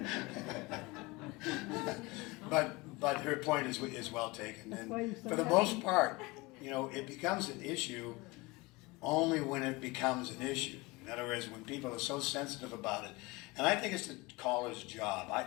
But her point is well taken, and for the most part, you know, it becomes an issue only when it becomes an issue. In other words, when people are so sensitive about it. And I think it's the caller's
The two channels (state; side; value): quieter; right; 23.0 dB